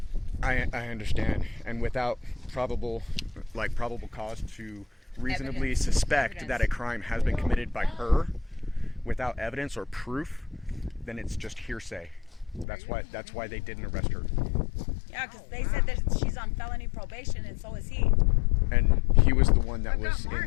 I understand, and without probable cause to reasonably suspect that a crime has been committed by her, without evidence or proof, then it's just hearsay. That's why they didn't arrest her. Yeah, because they said that she's on felony probation, and so is he. And he was the one that was got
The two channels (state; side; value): drops out; right; at 12.7 s